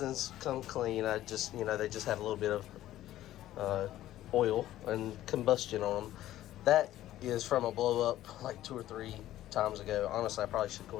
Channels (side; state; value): right; quieter; 13.8 dB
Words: come clean. They just had a little bit of oil and combustion on them. That is from a blow up like 2 or 3 times ago. Honestly, I probably should